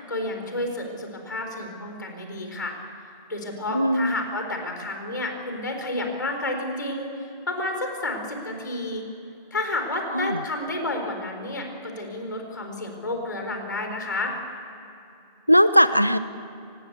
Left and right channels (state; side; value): inverted; both; correlation -0.59